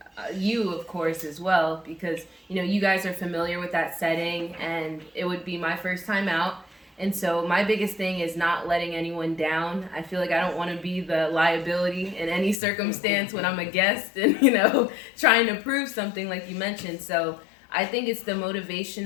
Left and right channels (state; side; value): drops out; right; at 12.6 s